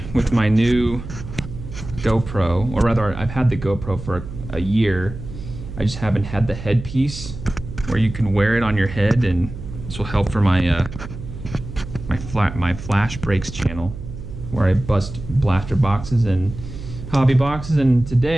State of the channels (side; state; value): right; noise; hum, 11 dB below the sound